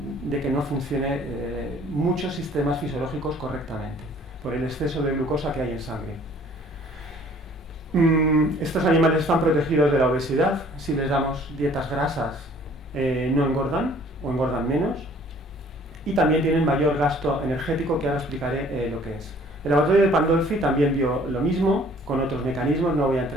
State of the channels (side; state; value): both; normal; correlation 0.55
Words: que no funcione muchos sistemas fisiológicos correctamente, por el exceso de glucosa que hay en sangre. Estos animales están protegidos de la obesidad. Si les damos dietas grasas, no engordan o engordan menos. Y también tienen mayor gasto energético, que ahora explicaré lo que es. El laboratorio de Pandolfi también vio lo mismo, con otros mecanismos, no voy a